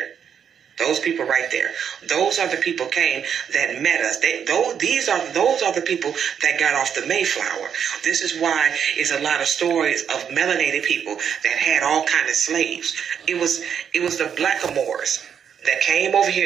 Those people right there. Those are the people that met us. Those are the people that got off the Mayflower. This is why it's a lot of stories of melanated people that had all kind of slaves. It was the blackamoors that came over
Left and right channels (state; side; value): quieter; left; 7.9 dB